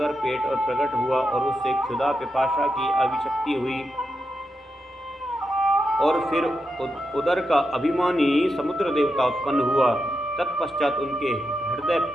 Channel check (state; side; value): normal; both; correlation 0.86